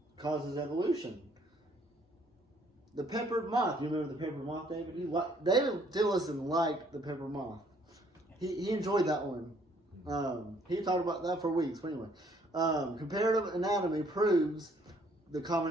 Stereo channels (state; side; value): normal; both; correlation 0.63